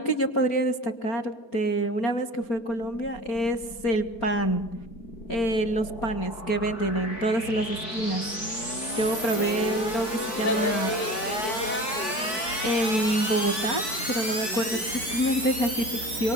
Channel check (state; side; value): late; right; 4.6 ms